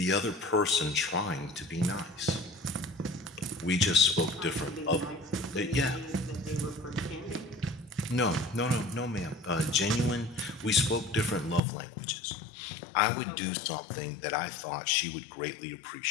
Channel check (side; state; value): right; drops out; at 11.6 s